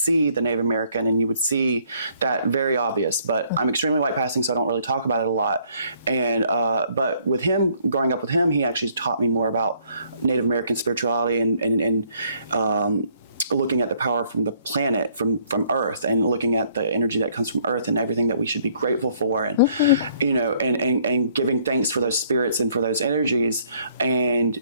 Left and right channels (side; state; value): both; inverted; correlation -0.65